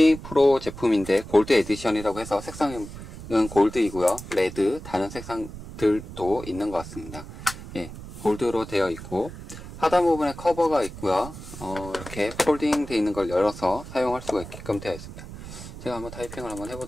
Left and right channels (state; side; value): noise; right; rumble, 13 dB below the sound